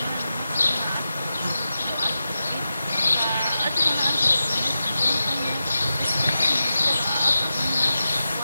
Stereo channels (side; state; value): both; inverted; correlation -0.91